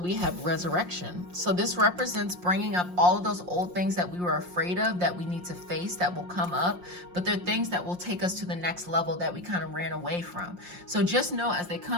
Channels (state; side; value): late; left; 5.6 ms